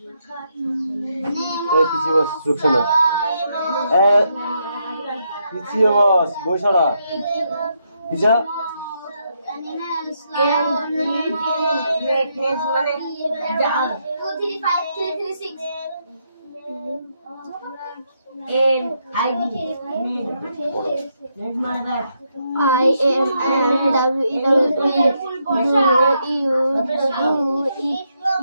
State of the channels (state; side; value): inverted; both; correlation -0.79